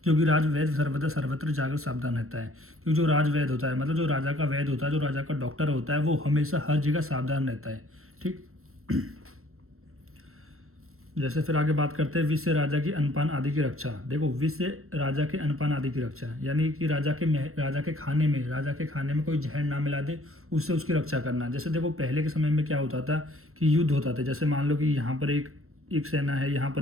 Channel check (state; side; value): late; left; 0.63 ms